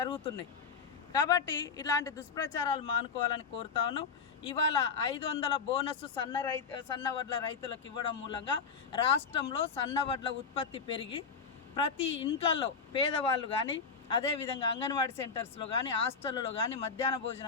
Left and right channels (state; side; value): quieter; right; 5.5 dB